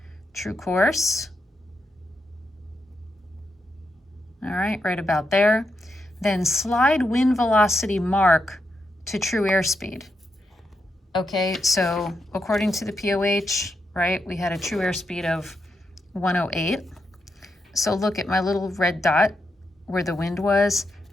true course. All right, right about there. Then slide wind velocity mark to true airspeed. Okay, so according to the POH, right, we had a true airspeed of 108. So look at my little red dot where the wind was.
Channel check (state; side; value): normal; both; correlation 0.84